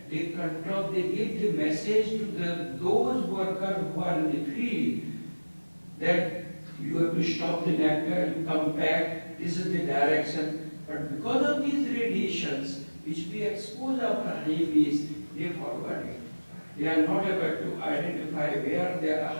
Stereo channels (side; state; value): both; inverted; correlation -1.00